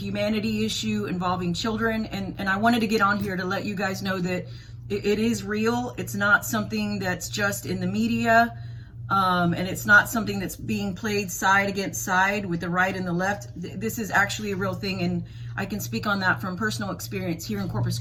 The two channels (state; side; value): identical; both; correlation 1.00